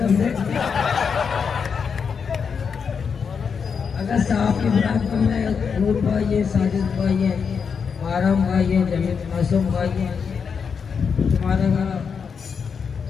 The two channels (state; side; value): quieter; right; 6.2 dB